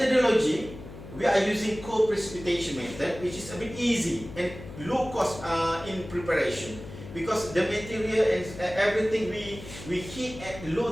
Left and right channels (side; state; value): left; noise; hum, 14 dB below the sound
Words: we are using co-precipitation method, which is a bit easy and low cost in preparation, because the material and everything we heat at